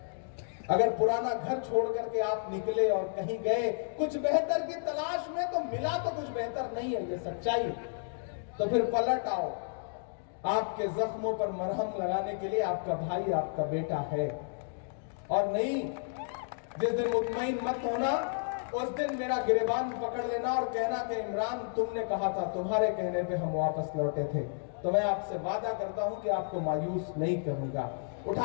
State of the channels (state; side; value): silent; right; digital silence